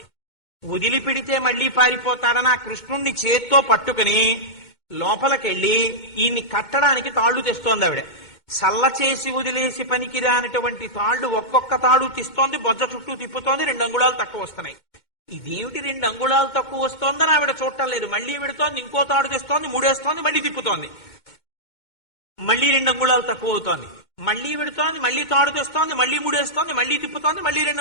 వదిలిపెడితే మళ్లీ పారిపోతాడని ఆ కృష్ణుణ్ణి చేత్తో పట్టుకుని లోపలికెళ్ళి ఈయన్ని కట్టడానికి తాళ్లు తెస్తోంది ఆవిడ. సల్ల చేసి వదిలేసి పనికిరానటువంటి తాళ్లు ఒక్కొక్క తాడు తీస్తోంది, బొజ్జ చుట్టూ తిప్పుతోంది, 2 అంగుళాలు తక్కువ వస్తున్నాయి. ఇదేమిటి 2 అంగుళాలు తక్కువ వస్తోందని ఆవిడ చూడటం లేదు. మళ్లీ విడుతోంది, ఇంకో తాడు తెస్తోంది, 3 వేస్తోంది, మళ్లీ తిప్పుతోంది, మళ్లీ 2 అంగుళాలు తక్కువ అవుతోంది, మళ్లీ విడుతోంది, మళ్లీ తాడు తెస్తోంది, మళ్లీ 3 వేస్తోంది, మళ్లీ తిప్పుతోంది, మళ్లీ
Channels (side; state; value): right; late; 2.1 ms